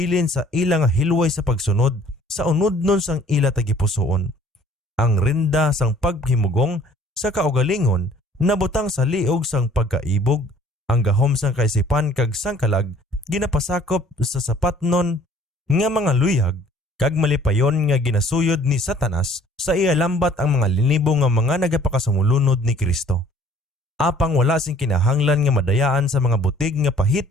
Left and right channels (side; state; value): both; normal; correlation 0.55